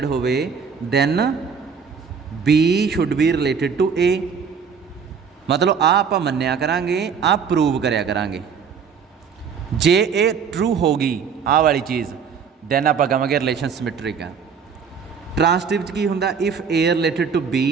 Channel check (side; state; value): left; quieter; 6.3 dB